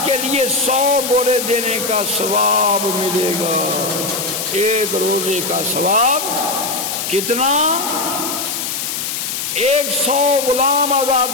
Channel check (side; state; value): left; noise; hiss, 3 dB below the sound